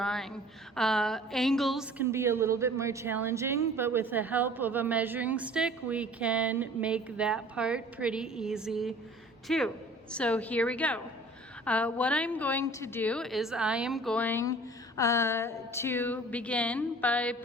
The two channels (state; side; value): normal; both; correlation 0.48